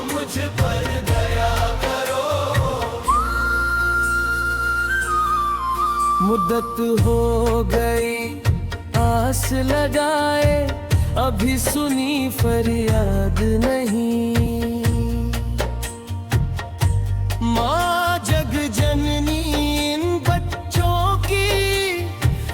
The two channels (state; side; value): identical; both; correlation 1.00